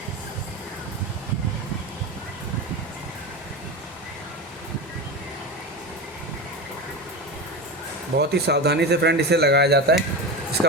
बहुत ही सावधानी से फ्रेंड इसे लगाया जाता है।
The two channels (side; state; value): both; normal; correlation 0.22